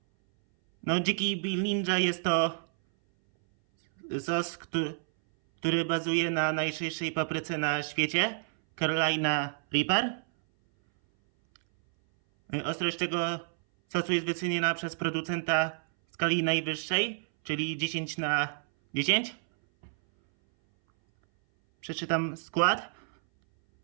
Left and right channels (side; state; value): left; silent; 58 dB below the other